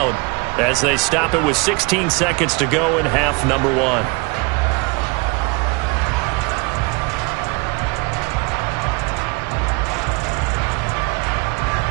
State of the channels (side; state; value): left; quieter; 28.4 dB